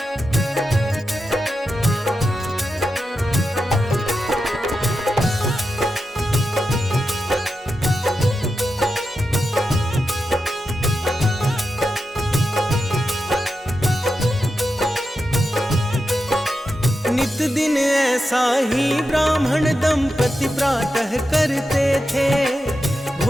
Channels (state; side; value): normal; both; correlation 0.89